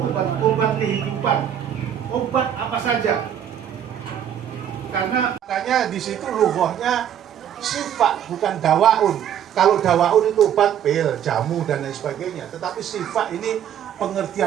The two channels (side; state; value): left; quieter; 9.6 dB